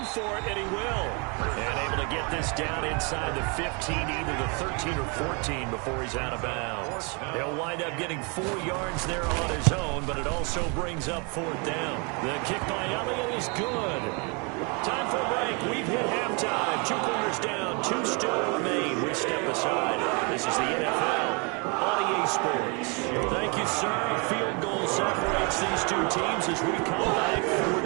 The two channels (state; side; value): quieter; left; 33.0 dB